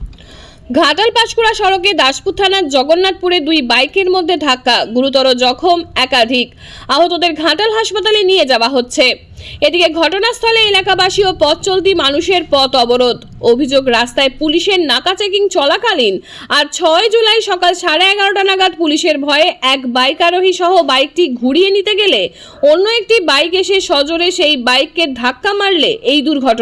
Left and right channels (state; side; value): identical; both; correlation 1.00